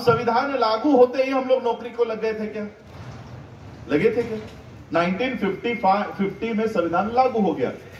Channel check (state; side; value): identical; both; correlation 1.00